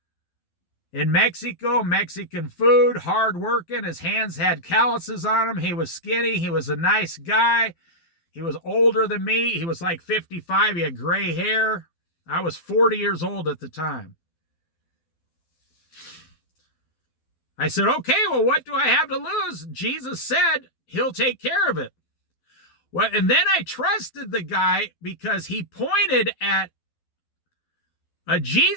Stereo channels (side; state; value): right; late; 12 ms